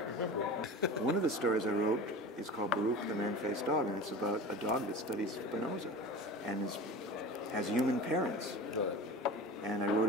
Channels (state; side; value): normal; both; correlation 0.34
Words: remember it. One of the stories I wrote is called Baruch the Man-Faced Dog, and it's about a dog that studies Spinoza and has human parents. Right. And I